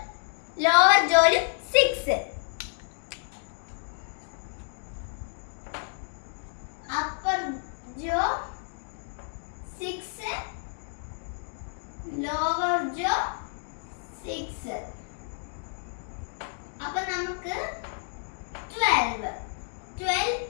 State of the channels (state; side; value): silent; right; 56 dB below the other